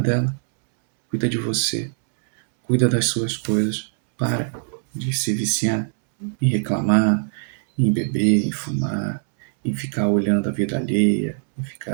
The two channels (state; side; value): silent; left; 64 dB below the other